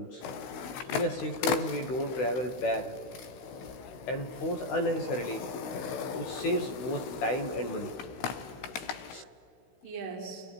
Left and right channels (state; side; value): late; right; 16 ms